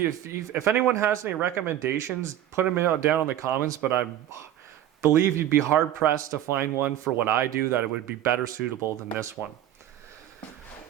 anyone has any recommendations, put them down in the comments, but I believe you'd be hard pressed to find one for what I do that it would be better suitable than this one.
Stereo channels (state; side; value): quieter; left; 11.9 dB